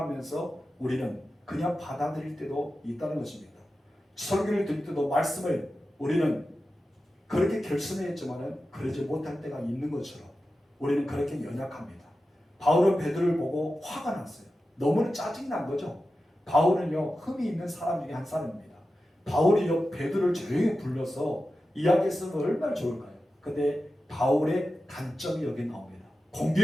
우리는 그냥 받아들일 때도 있다는 것입니다. 설교를 들을 때도 말씀을 우리는 그렇게 결심했지만 그러지 못할 때가 있는 것처럼 우리는 그렇게 연약합니다. 바울은 베드로를 보고 화가 났어요. 너무 짜증난 거죠. 바울은요, 흠이 있는 사람 중에 한 사람입니다. 바울이요, 베드로를 조용히 불러서 이야기했으면 얼마나 좋을까요? 근데 바울의 단점이 여기 나옵니다.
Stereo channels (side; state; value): both; normal; correlation 0.92